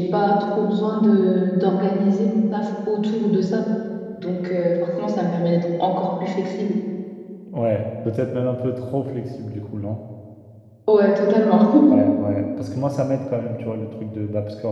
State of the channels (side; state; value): both; identical; correlation 1.00